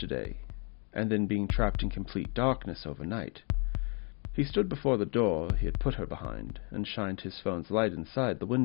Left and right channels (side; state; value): right; quieter; 36.0 dB